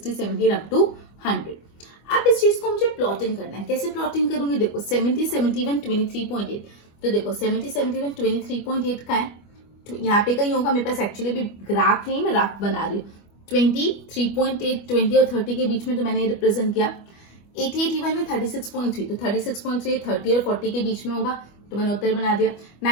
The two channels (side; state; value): right; late; 25 ms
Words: 70 अप टू 100। अब इस चीज को मुझे प्लॉटिंग करना है। कैसे प्लॉटिंग करूंगी? देखो 70-71, 23.8। तो देखो 70-71, 23.8 का है, यहाँ पे कहीं होगा, मेरे पास एक्चुअली भी ग्राफ नहीं, मैं रफ बना रही हूँ। 20, 3.8, 20 और 30 के बीच में तो मैंने रिप्रेजेंट किया। 80, 81 में 36.3, तो 36.3 30 और 40 के बीच में होगा, तो मैंने उत्तर बना दिया।